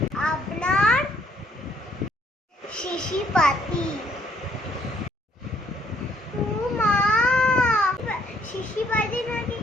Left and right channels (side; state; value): both; normal; correlation 0.67